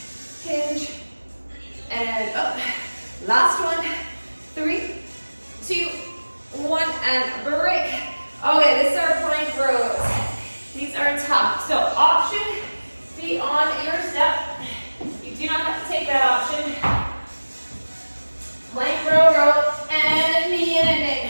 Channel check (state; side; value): inverted; both; correlation -1.00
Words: Hinge. And up. Last one. 3, 2, 1, and break. Okay, this is our plank rows. These are tough. So option, be on your step. You do not have to take that option. Plank row, and knee in and in.